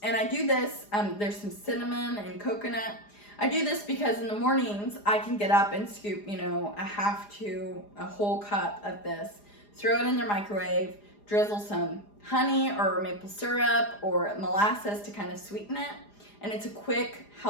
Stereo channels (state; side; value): late; right; 4.9 ms